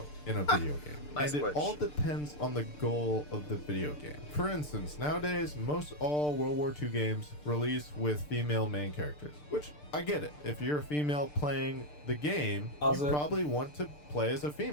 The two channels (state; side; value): late; right; 6.7 ms